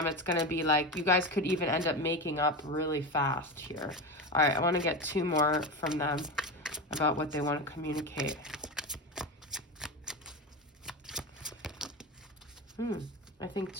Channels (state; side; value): normal; both; correlation 0.21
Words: it's going to be like you guys could even end up making up really fast here. All right, I want to get 2 more from them about what they want to communicate. I think